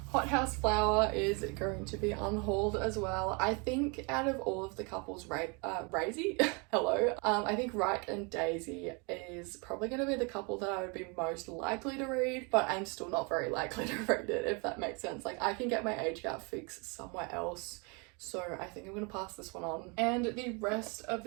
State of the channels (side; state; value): left; quieter; 31.9 dB